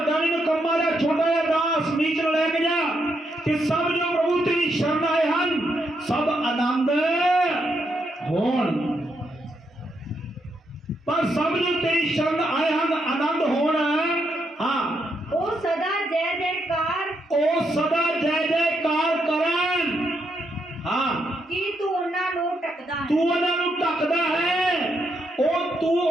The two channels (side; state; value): both; normal; correlation 0.79